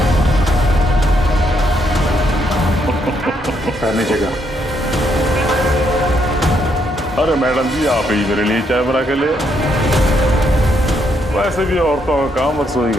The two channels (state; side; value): normal; both; correlation 0.75